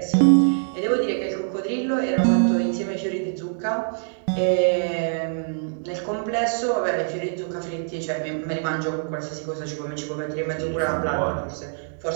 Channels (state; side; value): silent; left; digital silence